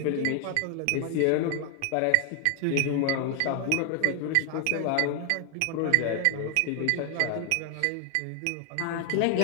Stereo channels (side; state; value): both; different; correlation 0.00